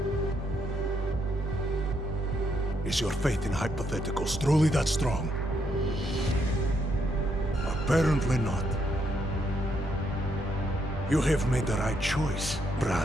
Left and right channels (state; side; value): normal; both; correlation 0.76